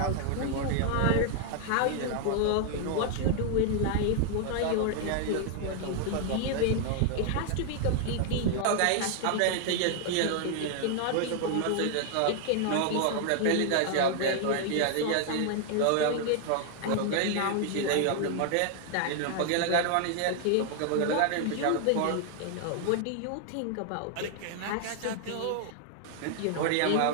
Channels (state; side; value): different; both; correlation 0.00